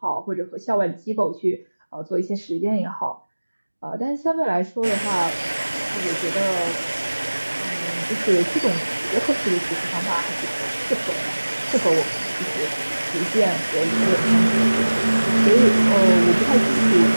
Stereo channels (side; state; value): both; inverted; correlation -1.00